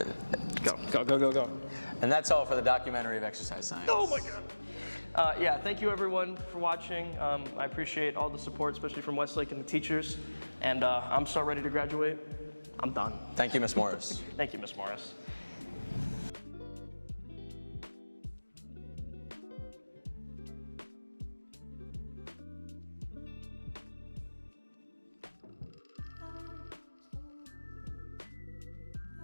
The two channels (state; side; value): inverted; both; correlation -1.00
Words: Go. And that's all for the documentary of exercise science. Oh my God. Yeah, thank you everyone for watching. I appreciate all the support, especially from Westlake and the teachers. And I'm so ready to graduate. I'm done. Thank you, Miss Morris. Thank you, Miss Morris.